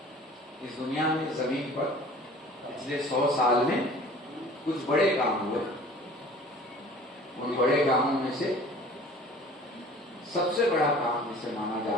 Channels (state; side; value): normal; both; correlation 0.46